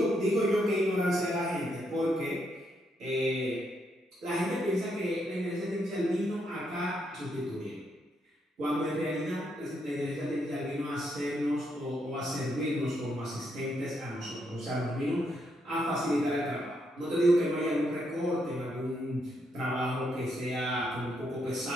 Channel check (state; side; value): normal; both; correlation 0.77